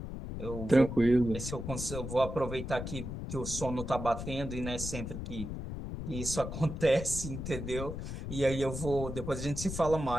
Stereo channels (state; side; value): noise; left; rumble, 6 dB below the sound